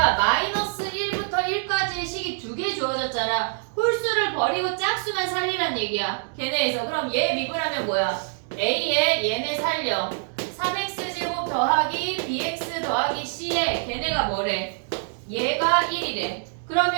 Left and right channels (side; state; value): left; silent; 62 dB below the other